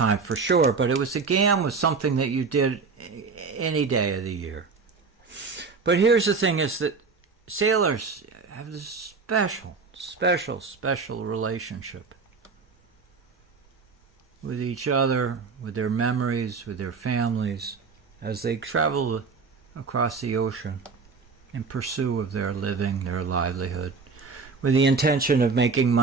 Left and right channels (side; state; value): left; quieter; 4.8 dB